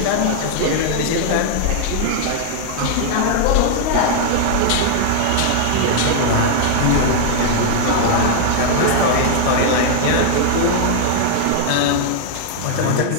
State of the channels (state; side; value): different; both; correlation 0.00